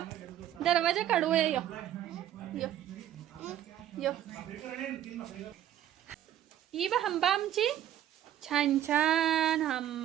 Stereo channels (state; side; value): quieter; left; 11.6 dB